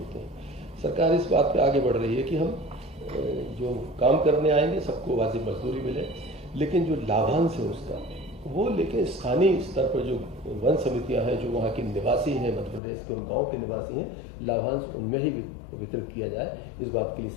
हैं। सरकार इस बात पे आगे बढ़ रही है कि हम जो काम करने आएंगे सबको वाजिब मजदूरी मिले, लेकिन जो लाभांश है उसका वो लेकिन स्थानीय स्तर पर जो वन समितियां हैं, जो वहाँ के निवासी हैं, मध्य प्रदेश के उन गाँव के निवासी हैं, लाभांश उनमें ही वितरित किया जाए। इस बात के लिए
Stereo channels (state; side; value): drops out; right; at 12.8 s